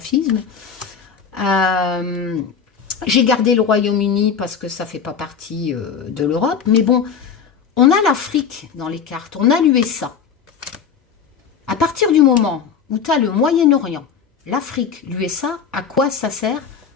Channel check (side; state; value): right; quieter; 6.7 dB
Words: J'ai gardé le Royaume-Uni parce que ça ne fait pas partie de l'Europe. Mais bon, on a l'Afrique dans les cartes. On a l'USA. À partir du moment où tu as le Moyen-Orient, l'Afrique, l'USA, à quoi ça sert?